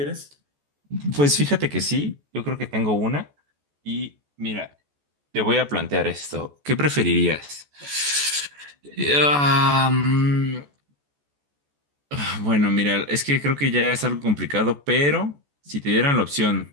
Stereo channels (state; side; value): late; left; 14 ms